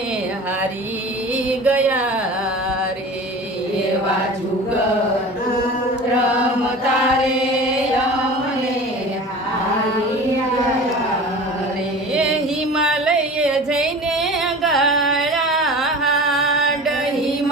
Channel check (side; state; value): both; normal; correlation 0.37